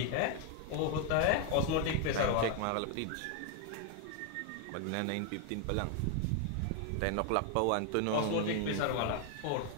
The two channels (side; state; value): both; different; correlation 0.01